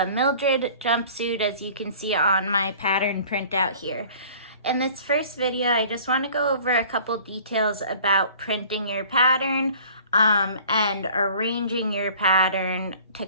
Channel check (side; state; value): both; inverted; correlation -0.49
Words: Mildred jumpsuit, as you can see on my pattern printout here. In this first video, I just want to go over a couple details about printing your pattern and arranging your pattern to